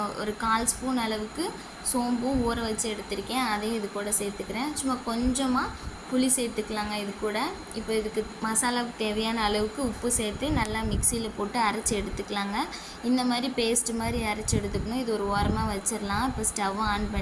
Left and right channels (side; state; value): both; identical; correlation 1.00